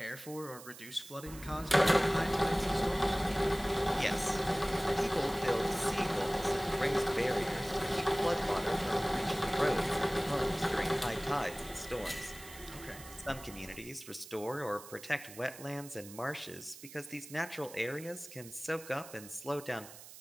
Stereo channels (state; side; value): noise; right; hiss, 16 dB below the sound